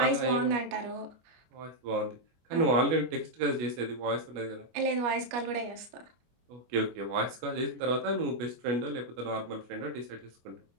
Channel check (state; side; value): late; left; 25 ms